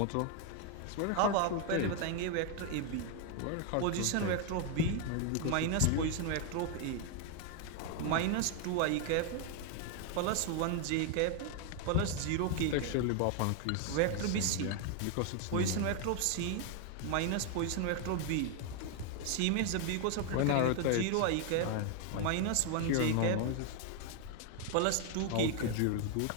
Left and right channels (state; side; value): different; both; correlation 0.01